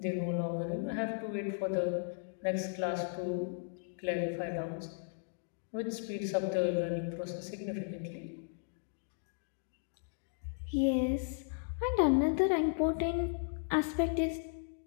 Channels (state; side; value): silent; right; digital silence